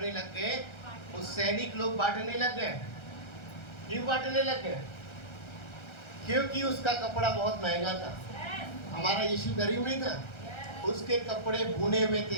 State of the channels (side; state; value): right; late; 1.3 ms